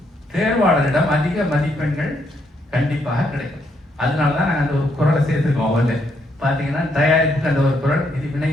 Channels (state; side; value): normal; both; correlation 0.75